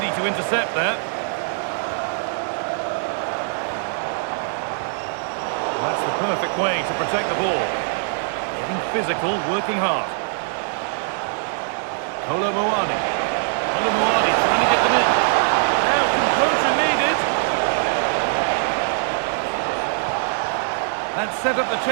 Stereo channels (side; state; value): left; silent; 64 dB below the other